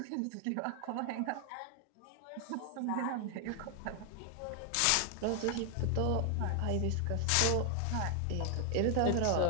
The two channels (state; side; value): different; both; correlation 0.00